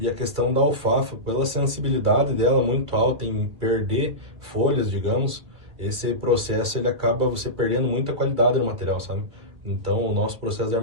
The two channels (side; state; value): left; late; 2.3 ms